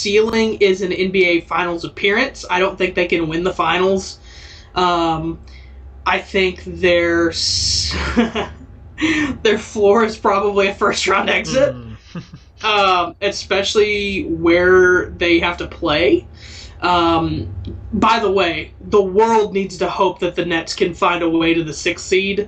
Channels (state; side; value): identical; both; correlation 1.00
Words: is an NBA Finals appearance. I don't think they can win the finals. I think their floor is probably a first round exit. Especially where they have to play. By the way, the world needs to hope that the Nets can find a way to the 6th seed.